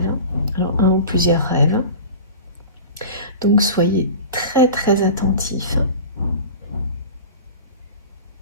Alors un ou plusieurs rêves. Donc soyez très très attentifs.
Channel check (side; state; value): both; inverted; correlation -0.35